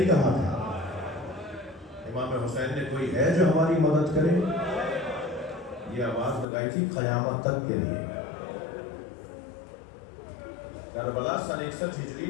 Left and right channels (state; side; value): drops out; right; at 6.5 s